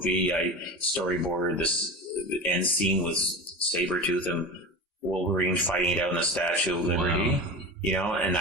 I storyboarded this end scene with Sabretooth and Wolverine fighting it out in the Statue of Liberty. Wow. And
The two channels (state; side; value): normal; both; correlation 0.28